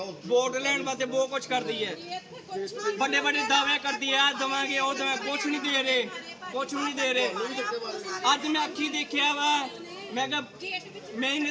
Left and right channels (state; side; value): identical; both; correlation 1.00